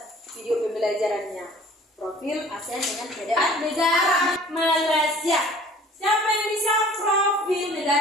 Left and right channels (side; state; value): both; normal; correlation 0.49